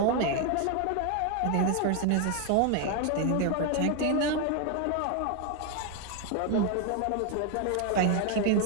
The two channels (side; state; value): both; different; correlation 0.01